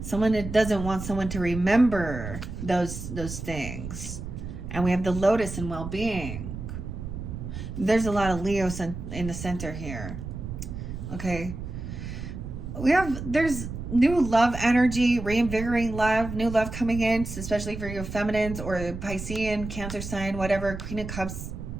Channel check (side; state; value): right; noise; rumble, 8 dB below the sound